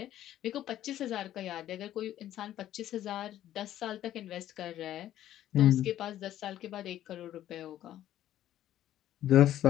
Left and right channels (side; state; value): right; quieter; 12.5 dB